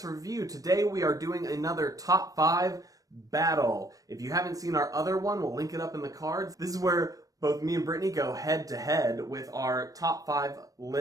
Review. Today we are doing another top 5 battle. If you haven't seen our other one, we'll link it up in the cards. This is where both me and Brittany go head to head with our top 5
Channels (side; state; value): left; late; 0.17 ms